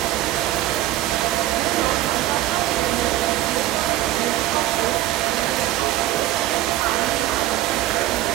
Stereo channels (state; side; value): quieter; left; 14.6 dB